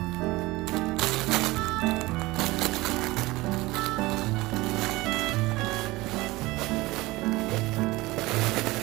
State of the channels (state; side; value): quieter; left; 20.6 dB